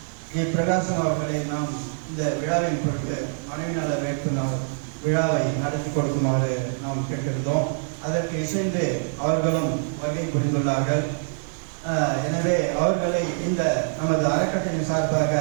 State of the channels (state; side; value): silent; left; 62 dB below the other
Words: ஜி பிரகாசம் அவர்களை நாம் இந்த விழாவின் பொருட்டு மனைவி நல வேட்பு நாள் விழாவை நடத்தி கொடுக்குமாறு நாம் கேட்டிருந்தோம். அதற்கு இசைந்து அவர்களும் வருகை புரிந்துள்ளார்கள். எனவே அவர்களை இந்த நமது அறக்கட்டளையின் சார்பாக